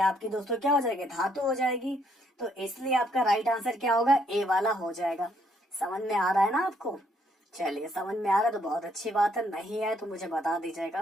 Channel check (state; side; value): normal; both; correlation 0.70